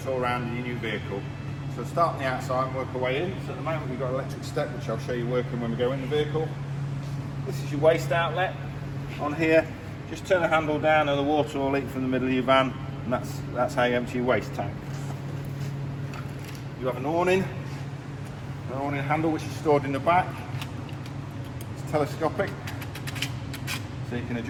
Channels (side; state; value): both; identical; correlation 1.00